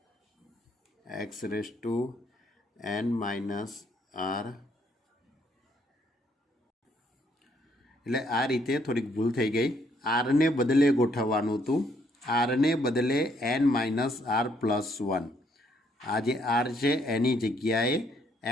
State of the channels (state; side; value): normal; both; correlation 0.69